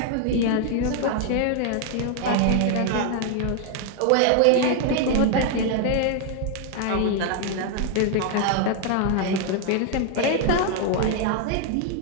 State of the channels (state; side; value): different; both; correlation 0.00